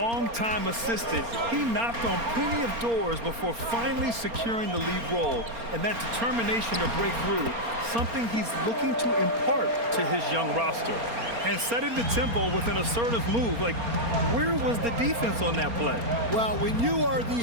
assistant. He knocked on plenty of doors before finally securing the lead role. And that determination to break through, something he's looking to impart to his young roster. And setting the tempo with an assertive move. Like, where was the defense on that play? Well, when you are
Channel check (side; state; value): left; late; 4.3 ms